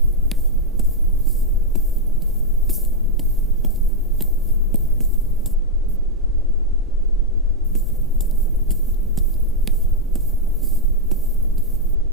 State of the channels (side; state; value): both; normal; correlation -0.01